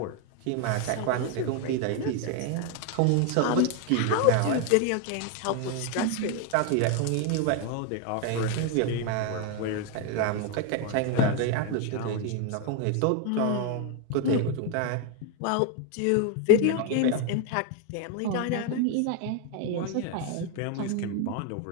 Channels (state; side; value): different; both; correlation 0.01